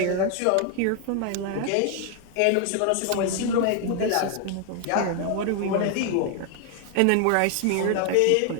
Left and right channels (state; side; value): different; both; correlation 0.01